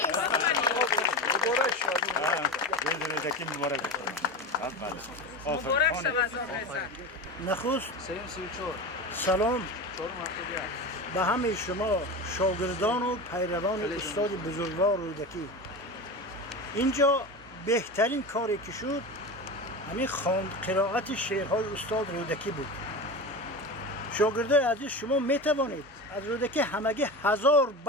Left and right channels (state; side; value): normal; both; correlation 0.25